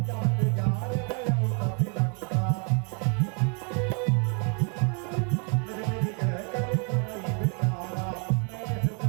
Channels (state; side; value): quieter; left; 37.8 dB